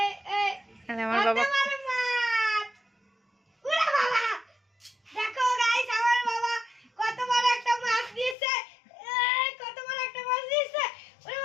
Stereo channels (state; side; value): drops out; right; at 8.3 s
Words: এ আমার বাবা কত বড় মাছ ওরে বাবা দেখো গাইস আমার বাবা কত বড় একটা মাছ নিয়েছে কত বড় একটা মাছ নিয়েছে ওরে